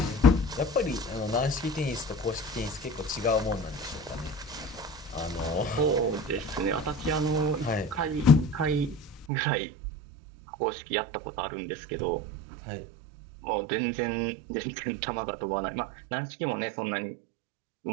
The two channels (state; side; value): drops out; left; at 9.2 s